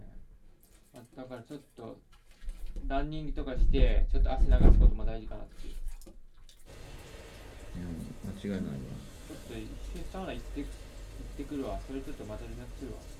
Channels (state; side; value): identical; both; correlation 1.00